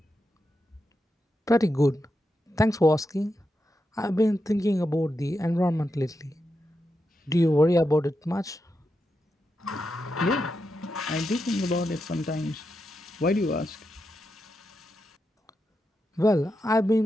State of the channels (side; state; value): both; normal; correlation 0.87